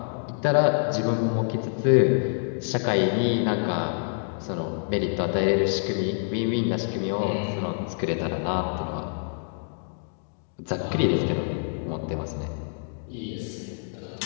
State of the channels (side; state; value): right; silent; digital silence